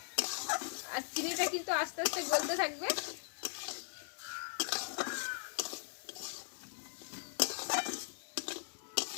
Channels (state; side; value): silent; right; 52 dB below the other